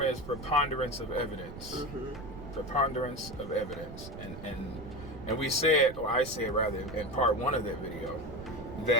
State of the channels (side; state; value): right; noise; rumble, 12 dB below the sound